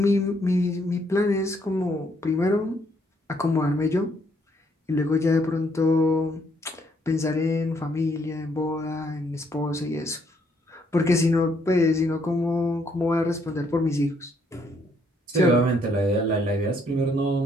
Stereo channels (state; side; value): normal; both; correlation 0.70